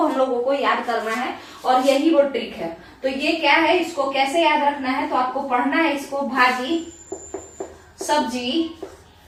लोगों को याद करना है और यही वो ट्रिक है। तो ये क्या है, इसको कैसे याद रखना है, तो आपको पढ़ना है इसको भाजी सब्जी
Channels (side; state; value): both; identical; correlation 1.00